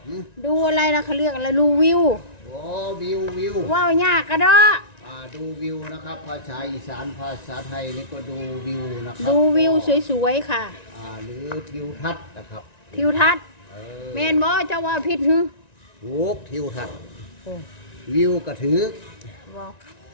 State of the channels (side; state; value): right; late; 1.9 ms